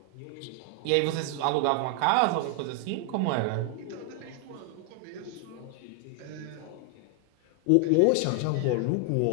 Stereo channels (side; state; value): both; different; correlation 0.00